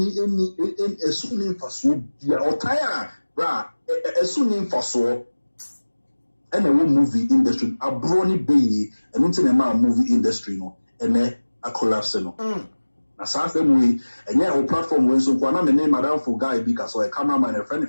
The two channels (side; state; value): both; inverted; correlation -1.00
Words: esuni mfaso bia otaya bra esuni mfaso and a movie industry abroni be and until a movie industry no and a collapse no na sa same way and yeah our platform we so kwana me name madam for guy because a cameraman and a